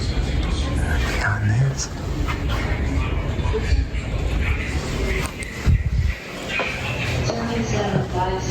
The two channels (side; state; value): both; identical; correlation 1.00